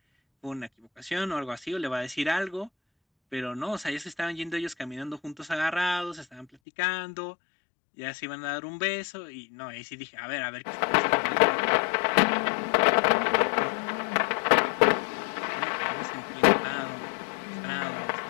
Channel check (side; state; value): right; drops out; at 6.5 s